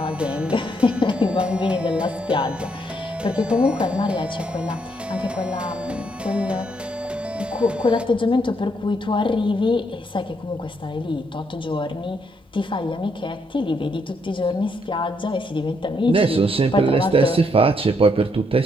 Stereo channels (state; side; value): normal; both; correlation 0.74